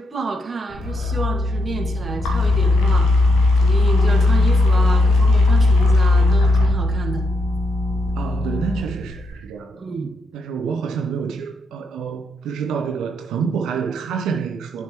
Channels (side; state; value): both; normal; correlation 0.80